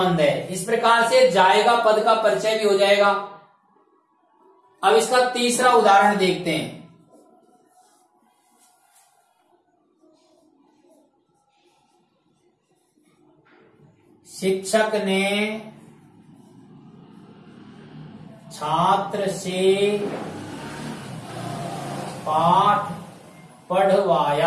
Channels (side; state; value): both; identical; correlation 1.00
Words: है। इस प्रकार से जाएगा पद का परिचय भी हो जाएगा। अब इसका तीसरा उदाहरण देखते हैं। शिक्षक ने छात्र से पाठ